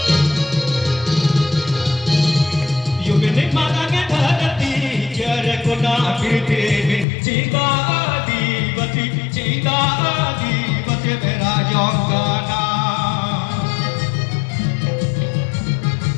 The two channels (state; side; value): drops out; right; at 7.1 s